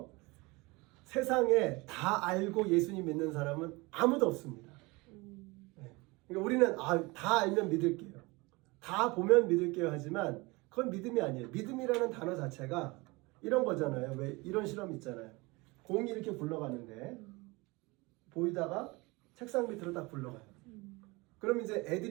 세상에 다 알고 예수님 믿는 사람은 아무도 없습니다. 그러니까 우리는 다 알면 믿을게요. 다 보면 믿을게요 하지만 그건 믿음이 아니에요. 믿음이라는 단어 자체가 이런 거잖아요. 왜 이런 실험 있잖아요. 공이 이렇게 굴러가는데 보이다가 책상 밑으로 딱 굴러가요. 그럼 이제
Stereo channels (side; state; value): left; quieter; 24.5 dB